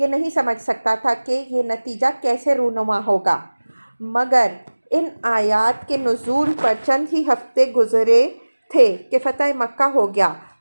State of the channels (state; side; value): inverted; both; correlation -1.00